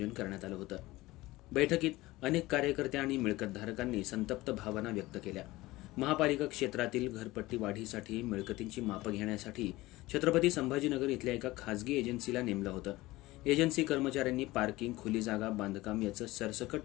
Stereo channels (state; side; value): quieter; right; 19.0 dB